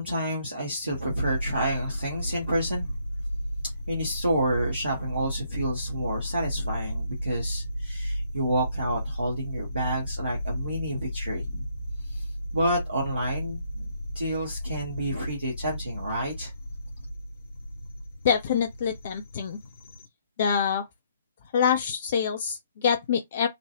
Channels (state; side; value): inverted; both; correlation -0.69